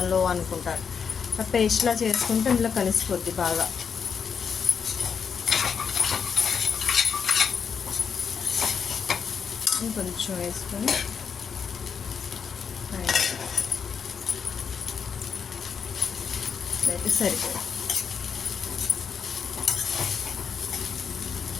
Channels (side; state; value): right; quieter; 6.5 dB